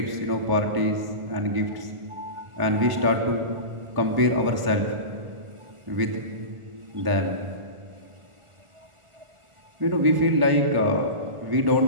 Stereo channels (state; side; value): late; left; 1.1 ms